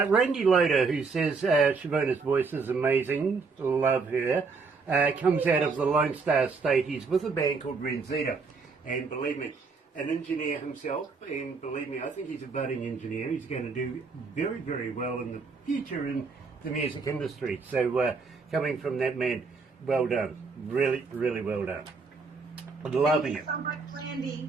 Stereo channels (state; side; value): quieter; left; 4.6 dB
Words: Loader, who says Chavonna's voice is amazing, love her, comes out of the Lone Star State. He's with a band called Renzita, and believe me, an engineer himself, and believe me, I think he's a budding engineer. He's going to do very, very well in the future in the music industry. So coming from that man, well done. Really, really well done. Loving it. Thank you so much, Randy.